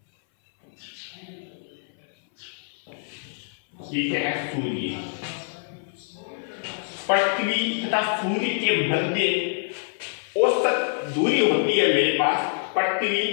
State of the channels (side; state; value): right; silent; 59 dB below the other